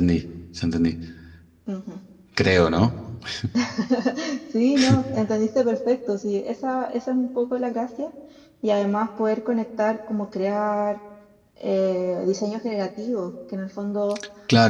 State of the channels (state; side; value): identical; both; correlation 1.00